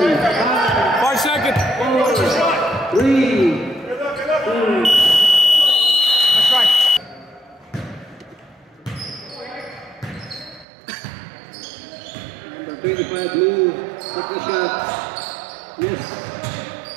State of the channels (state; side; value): drops out; left; at 10.7 s